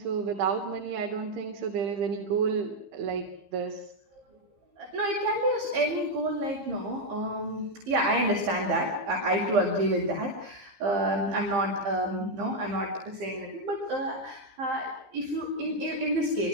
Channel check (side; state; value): left; late; 15 ms